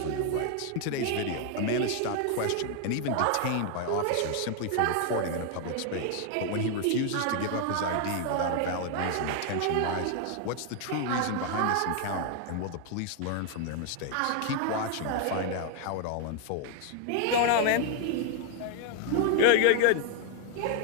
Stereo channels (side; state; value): both; different; correlation 0.00